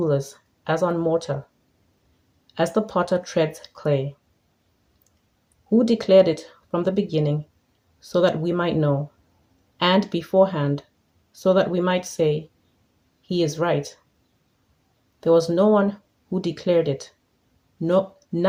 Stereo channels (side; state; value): both; identical; correlation 1.00